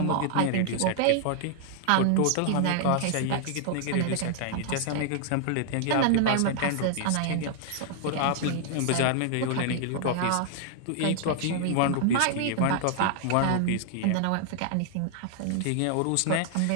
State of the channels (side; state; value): both; different; correlation 0.00